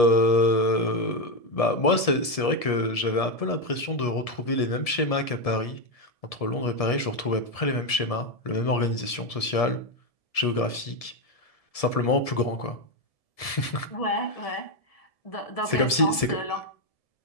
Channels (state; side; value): late; right; 1.7 ms